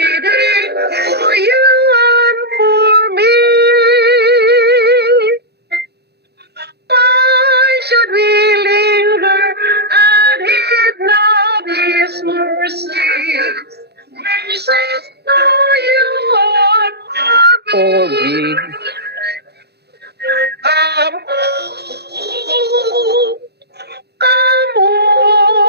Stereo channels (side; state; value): left; late; 0.48 ms